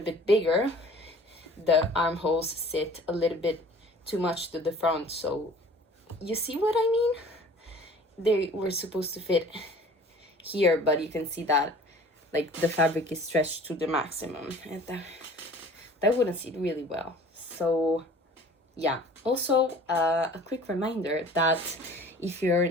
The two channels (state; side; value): normal; both; correlation 0.48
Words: bit bigger, the armholes sit a little bit too much to the front. So you see what I mean? They were supposed to fit here, but you can see that like the fabric is stretched to the maximum, and that wouldn't sit really well. So yeah, also a quick reminder that if you're